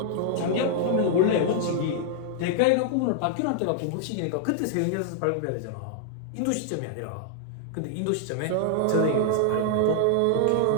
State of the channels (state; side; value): different; both; correlation -0.01